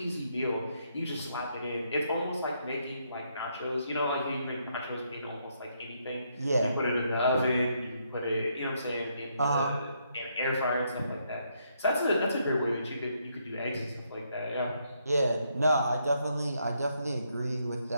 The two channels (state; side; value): inverted; both; correlation -0.75